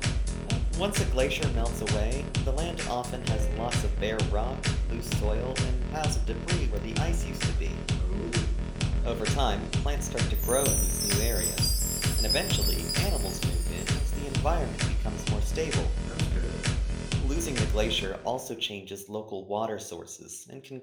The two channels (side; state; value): both; identical; correlation 1.00